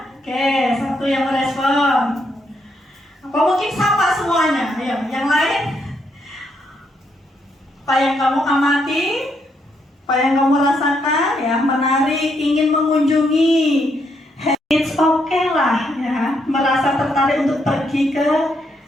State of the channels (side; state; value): both; normal; correlation 0.76